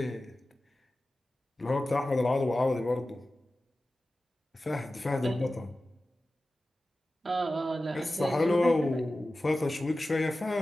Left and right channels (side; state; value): both; normal; correlation 0.95